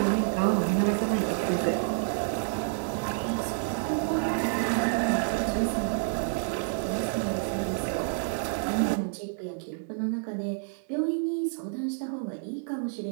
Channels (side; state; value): left; silent; digital silence